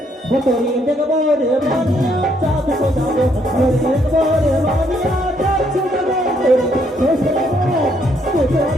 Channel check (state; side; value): normal; both; correlation 0.71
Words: তোরে দেখবো রে মানিয়া চাঁদ সোজাবো তোরে দেখবো রে মানিয়া চাঁদ সোজাবো।